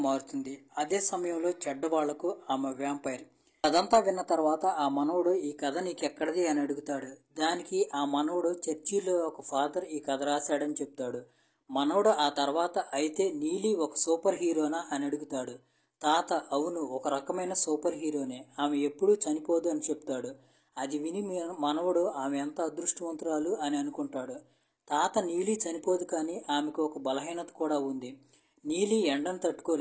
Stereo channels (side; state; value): both; identical; correlation 1.00